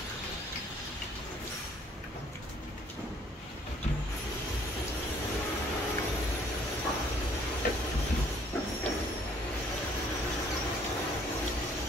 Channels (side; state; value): both; normal; correlation 0.60